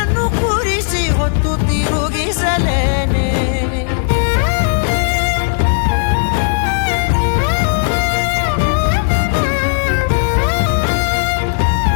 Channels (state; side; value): silent; right; digital silence